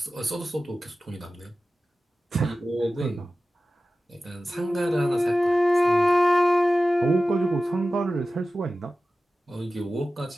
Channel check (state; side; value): normal; both; correlation 0.95